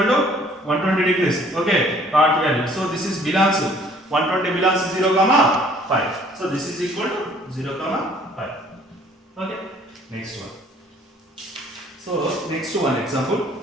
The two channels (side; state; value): both; normal; correlation 0.57